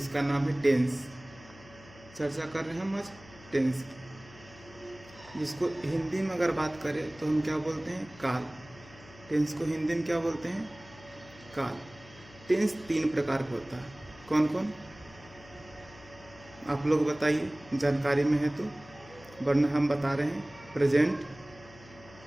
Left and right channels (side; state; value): left; noise; hum, 21 dB below the sound